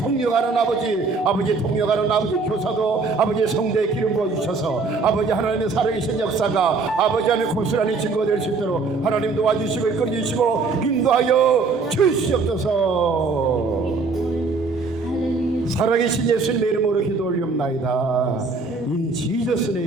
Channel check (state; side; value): quieter; left; 4.2 dB